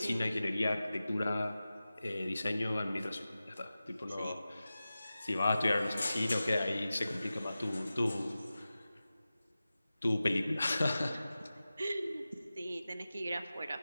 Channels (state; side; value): inverted; both; correlation -0.95